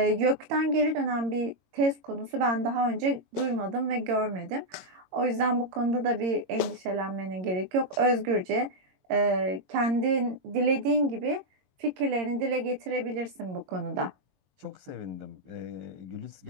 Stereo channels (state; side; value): late; left; 22 ms